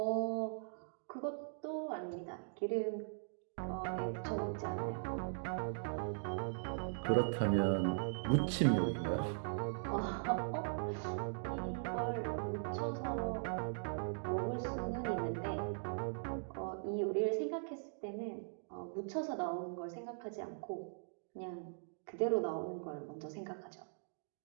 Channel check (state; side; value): silent; left; digital silence